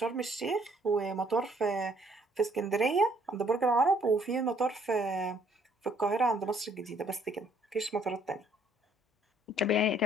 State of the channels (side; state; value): both; normal; correlation 0.64